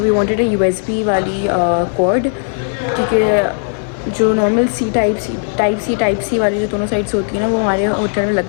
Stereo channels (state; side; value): silent; right; digital silence